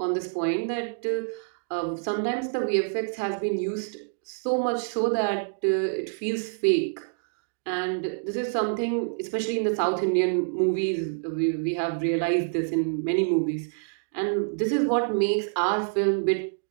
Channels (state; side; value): silent; left; digital silence